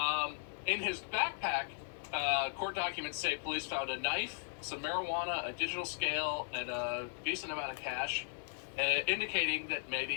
In his backpack, court documents say police found a knife, some marijuana, a digital scale, and a decent amount of cash, indicating that maybe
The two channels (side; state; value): right; silent; digital silence